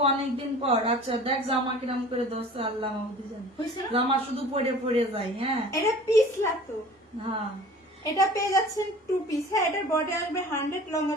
অনেকদিন পর। আচ্ছা দেখ জামা কিরাম করে দোস্ত, আল্লাহ মাহমুদি জানে হইছে না? জামা শুধু পরে পরে যায়। হ্যাঁ এটা পিস লাগতো। হ্যাঁ এটা পেয়ে যাচ্ছেন 2 পিস। হ্যাঁ এটার বডি আসবে 100, লং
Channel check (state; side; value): normal; both; correlation 0.44